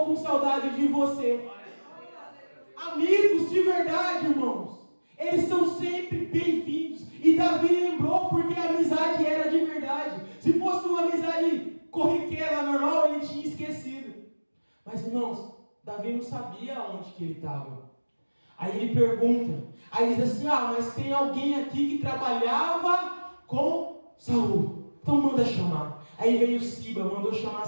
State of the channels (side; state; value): both; inverted; correlation -1.00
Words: com saudade de você. Amigos de verdade, irmãos, eles são sempre bem-vindos. E Davi lembrou porque a amizade era de verdade. Se fosse uma amizade corriqueira, normal, ele tinha esquecido. Mas, irmãos, Davi não sabia onde que ele estava. Aí ele pergunta, aí diz assim, mas tem alguém aqui que trabalhava com Saul. Então manda chamar. Aí veio Siba, mandou chamar